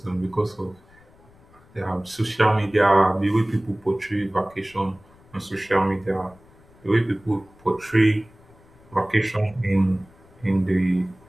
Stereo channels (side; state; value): left; noise; rumble, 27 dB below the sound